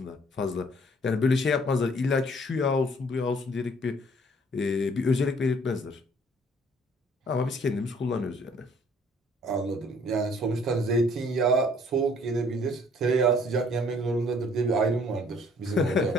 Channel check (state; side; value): normal; both; correlation 0.60